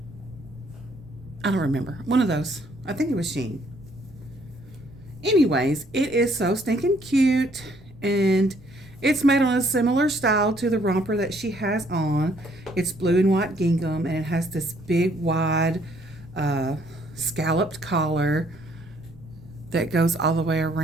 I don't remember. One of those. I think it was Shein. Anyways, it is so stinking cute. And it's made on a similar style to the romper that she has on. It's blue and white gingham. And it has this big, wide, scalloped collar that goes all the way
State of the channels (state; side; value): noise; right; rumble, 23 dB below the sound